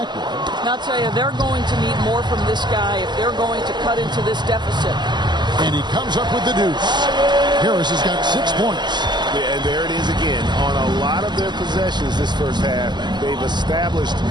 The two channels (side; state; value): left; late; 0.21 ms